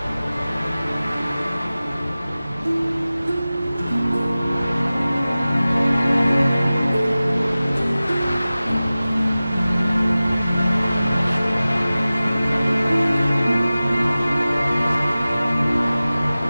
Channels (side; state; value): both; inverted; correlation -0.97